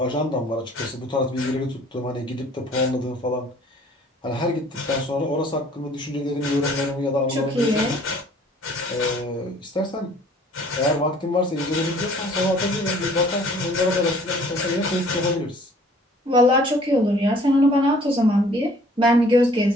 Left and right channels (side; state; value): both; normal; correlation 0.55